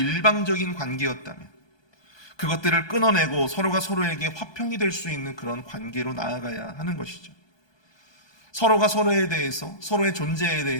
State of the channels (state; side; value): late; right; 1.2 ms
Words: 관계였다면 그것들을 끊어내고 서로가 서로에게 화평이 될 수 있는 그런 관계로 나아가야 하는 것이죠. 서로가 서로에 대해서, 서로의 존재에